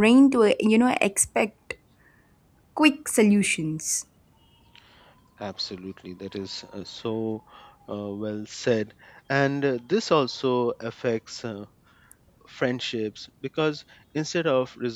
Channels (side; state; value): both; identical; correlation 1.00